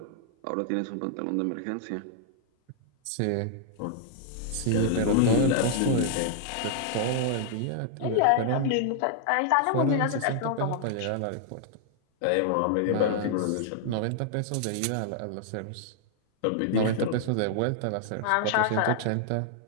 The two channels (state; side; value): different; both; correlation -0.01